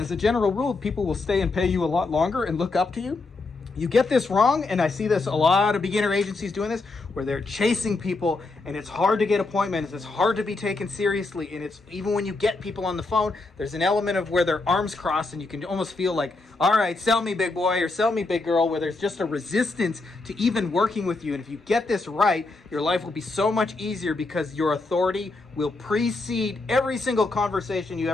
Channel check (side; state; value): right; quieter; 3.4 dB